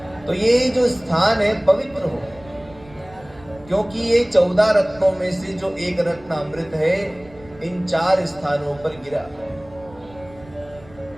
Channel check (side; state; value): right; noise; rumble, 23 dB below the sound